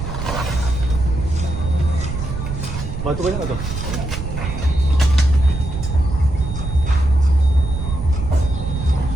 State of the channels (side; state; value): right; noise; rumble, 5 dB below the sound